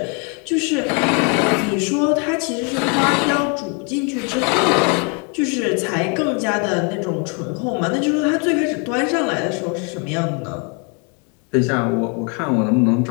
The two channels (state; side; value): quieter; right; 35.6 dB